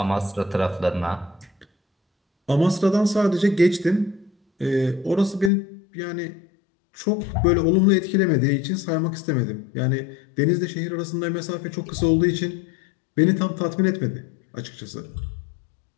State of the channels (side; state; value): right; drops out; at 5.5 s